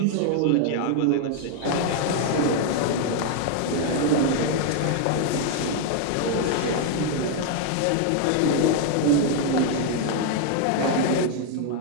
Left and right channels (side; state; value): both; different; correlation 0.00